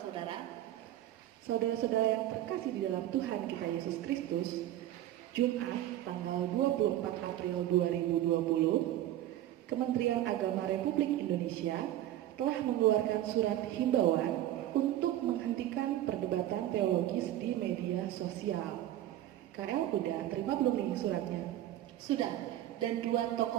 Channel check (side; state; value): left; quieter; 13.2 dB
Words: saudara-saudara yang terkasih di dalam Tuhan kita Yesus Kristus. Jumat tanggal 24 April 2020, Kementerian Agama Republik Indonesia telah mengeluarkan surat himbauan untuk menghentikan perdebatan teologis di media sosial. KL udah terima belum nih suratnya? Sudah, dan dua